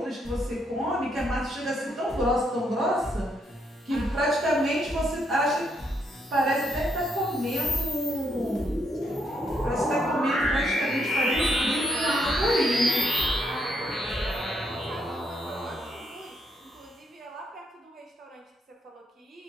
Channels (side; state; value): both; normal; correlation 0.75